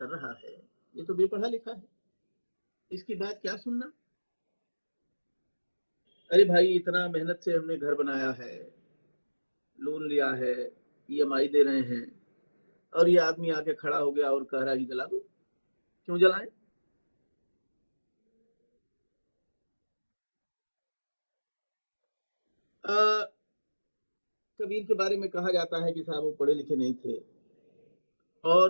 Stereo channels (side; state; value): both; inverted; correlation -1.00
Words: रहा है, ये तो बेपढ़ा लिखा है, इसकी बात क्या सुनना। अरे भाई, इतना मेहनत से हमने घर बनाया है, लोन लिया है, EMI दे रहे हैं, और ये आदमी आके खड़ा हो गया और कह रहा है कि जला दो। क्यों जलाएं? कबीर के बारे में कहा जाता है कि साहब वो पढ़े लिखे नहीं थे